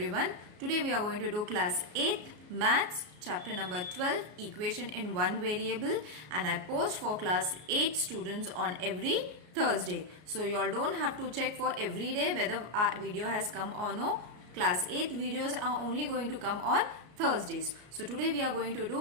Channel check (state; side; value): late; left; 33 ms